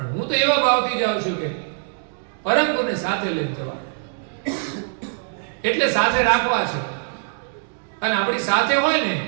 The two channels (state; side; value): silent; left; digital silence